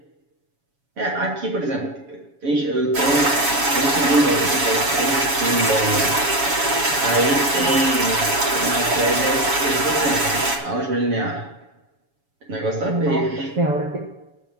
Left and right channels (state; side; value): late; left; 7.1 ms